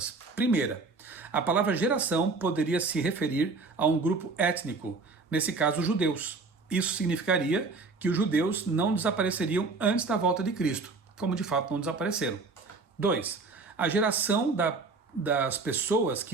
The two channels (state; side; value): quieter; left; 4.0 dB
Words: Primeira, a palavra geração poderia se referir a um grupo étnico, nesse caso, os judeus. Isso significaria que os judeus não desapareceriam antes da volta de Cristo, como de fato não desapareceram. 2. A geração das pessoas